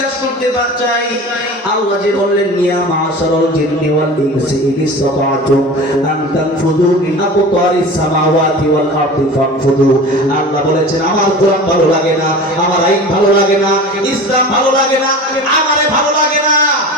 করতে চাই, আল্লাহ যে বললেন ইয়া মাশারাল জিন্নি ওয়াল ইনসি ইন ইসতাতা'তুম আন তানফুযু মিন আকতারিস সামাওয়াতি ওয়াল আরদি ফানফুযু। আল্লাহ বলেছেন আমার কোরআন ভালো লাগে না, আমার আইন ভালো লাগে না, ইসলাম ভালো লাগে না, আমারে ভালো লাগে না।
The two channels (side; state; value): both; normal; correlation 0.35